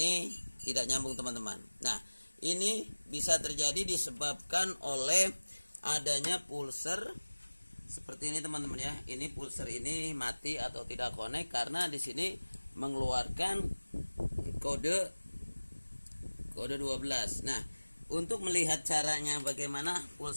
tidak nyambung teman-teman. Nah, ini bisa terjadi disebabkan oleh adanya pulser seperti ini teman-teman ya. Ini pulser ini mati atau tidak connect karena di sini mengeluarkan kode 12. Nah, untuk melihat caranya bagaimana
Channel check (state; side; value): inverted; both; correlation -1.00